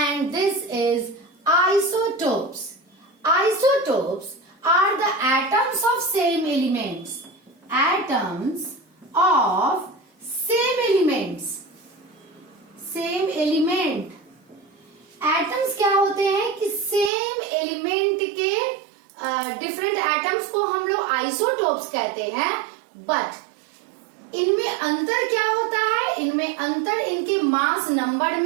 this is isotopes. Isotopes are the atoms of same elements. Atoms of same elements. Same element. Atoms क्या होते हैं कि सेम एलिमेंट के डिफरेंट एटम्स को हम लोग आइसोटोप्स कहते हैं। बट इनमें अंतर क्या होता है? इनमें अंतर इनके मास नंबर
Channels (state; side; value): drops out; left; at 17.1 s